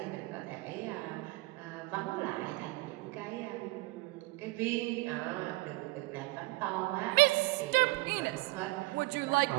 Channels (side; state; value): left; quieter; 22.0 dB